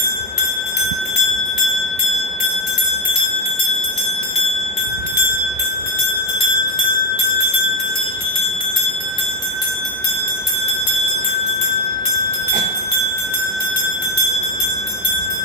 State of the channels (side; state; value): both; normal; correlation 0.09